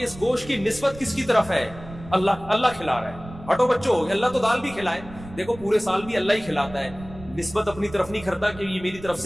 اس گوشت کی نسبت کس کی طرف ہے؟ اللہ کھلا رہا ہے. ہٹو بچوں، اللہ تو دال بھی کھلائے، دیکھو پورے سال بھی اللہ ہی کھلاتا ہے. نسبت اپنی طرف نہیں کرتا کہ یہ میری طرف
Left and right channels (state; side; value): noise; right; rumble, 16 dB below the sound